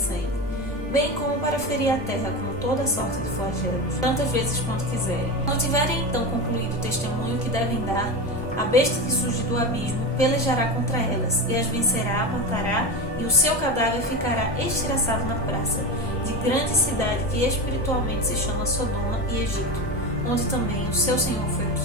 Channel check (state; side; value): normal; both; correlation 0.21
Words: bem como para ferir a terra com toda sorte de flagelos, tantas vezes quanto quiserem. Não tiverem então concluído o testemunho que devem dar, a besta que surge do abismo pelejará contra elas, e as vencerá, matará, e o seu cadáver ficará estilhaçado na praça, de grande cidade que espiritualmente se chama Sodoma e Egito, onde também o seu Senhor foi